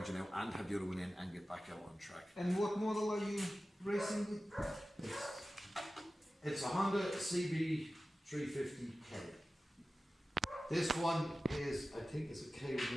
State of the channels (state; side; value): normal; both; correlation 0.95